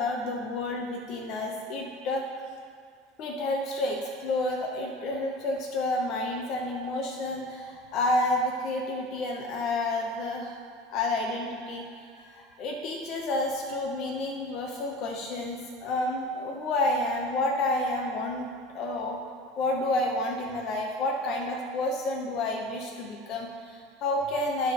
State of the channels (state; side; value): normal; both; correlation 0.36